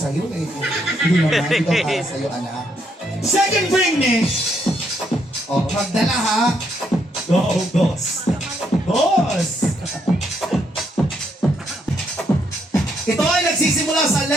eh. Hindi naman, ito para sa'yo, anak. Second bring me! Oh, magdala ha. Go, boss. Boss! Ito ay nagsisimula sa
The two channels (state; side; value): normal; both; correlation 0.74